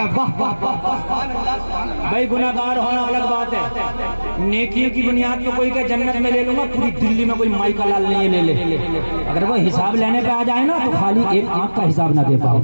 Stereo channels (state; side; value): inverted; both; correlation -1.00